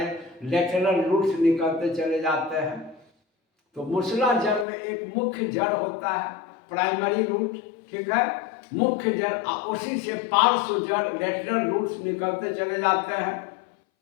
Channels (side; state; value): right; drops out; at 4.7 s